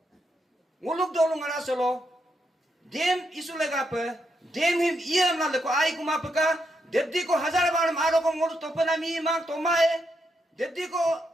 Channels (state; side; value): normal; both; correlation 0.81